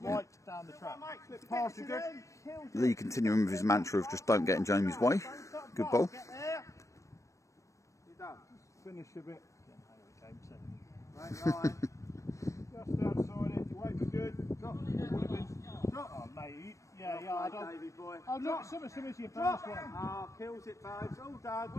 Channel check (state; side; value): late; right; 0.15 ms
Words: slight down the track. Slip past you, good. Lee continuing with his mantra of just don't get in Jamie's way. Good bowl. Get there. You're done. Finish a bit. Right line. Just outside it. Your weight was good. Drop. Drop. Oh, mate. Yeah, I don't. Davey boy. Oh, look, similar to your first one. Oh, kills it, babes. All done.